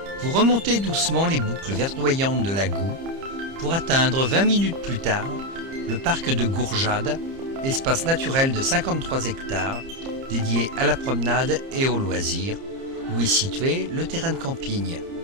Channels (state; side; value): late; left; 30 ms